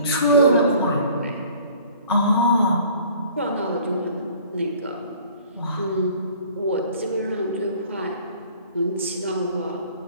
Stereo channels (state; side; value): inverted; both; correlation -0.51